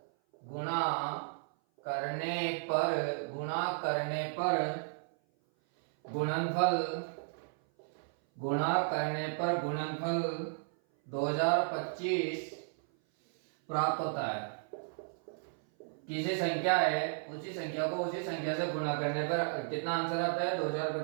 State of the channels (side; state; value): left; silent; 55 dB below the other